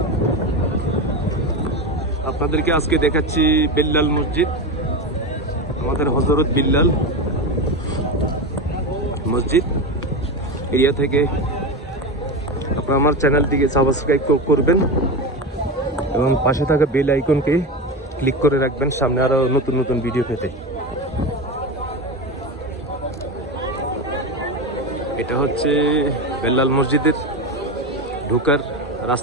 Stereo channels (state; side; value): normal; both; correlation 0.20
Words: আপনাদেরকে আজকে দেখাচ্ছি বিল্লাল মসজিদ, আমাদের হযরত বিল্লাল মসজিদ এরিয়া থেকে। আপনারা আমার চ্যানেলটিকে সাবস্ক্রাইব করবেন এবং পাশে থাকা বেল আইকনকে ক্লিক করে রাখবেন সামনে আরো নতুন নতুন ভিডিও পেতে। এটা হচ্ছে বিল্লাল মসজিদের ঢোকার